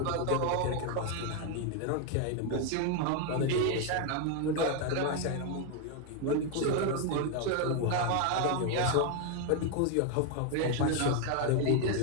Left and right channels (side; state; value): both; different; correlation 0.01